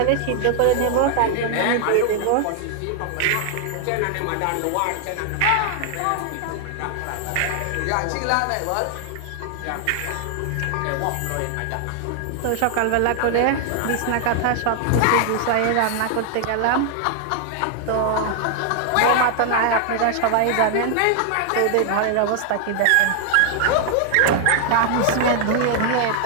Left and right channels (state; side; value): different; both; correlation 0.00